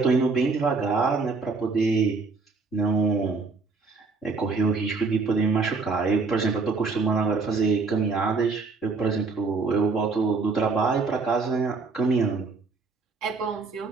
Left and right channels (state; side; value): quieter; left; 4.2 dB